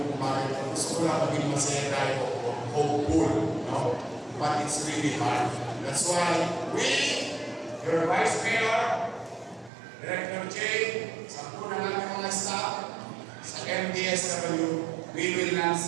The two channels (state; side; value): drops out; left; at 9.7 s